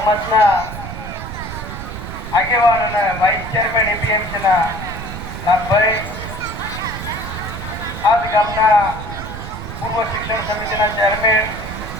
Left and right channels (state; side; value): noise; right; rumble, 9 dB below the sound